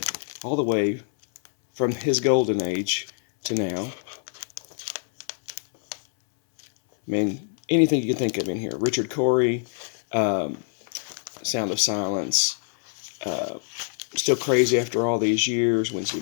all the way from his golden age to now. I mean, anything you can think of in here. Richard Cory, um, Sound of Silence, uh, Still Crazy After All These Years, Wednesday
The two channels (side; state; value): right; silent; 62 dB below the other